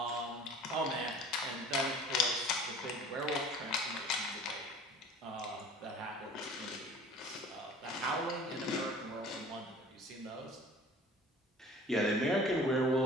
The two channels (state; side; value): normal; both; correlation 0.46